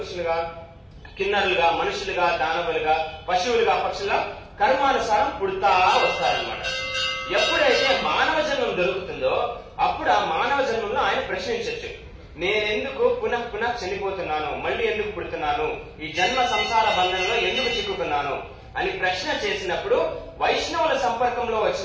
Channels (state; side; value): identical; both; correlation 1.00